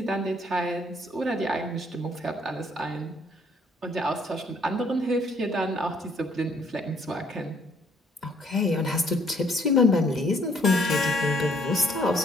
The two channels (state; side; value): normal; both; correlation 0.64